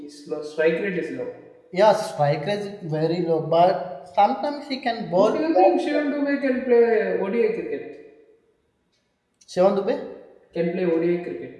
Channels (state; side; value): identical; both; correlation 1.00